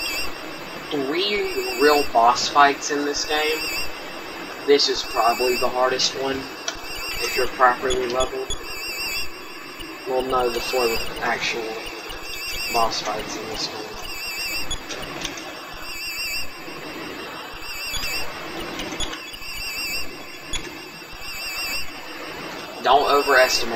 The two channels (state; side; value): identical; both; correlation 1.00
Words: 3 real boss fights in this game, this is probably the hardest one, if you're properly leveled. Well, no, the 4 actual boss fights in this game. Don't